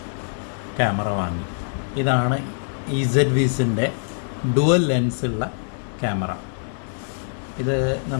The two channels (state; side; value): silent; right; digital silence